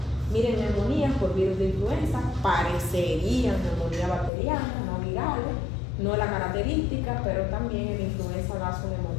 Miren, neumonías por virus de influenza parecerían neumonía bacteriana, no viral, no es la característica, pero también en influenza da su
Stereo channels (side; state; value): right; drops out; at 4.3 s